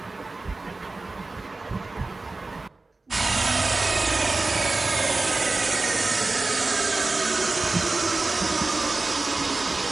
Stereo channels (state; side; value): quieter; left; 3.4 dB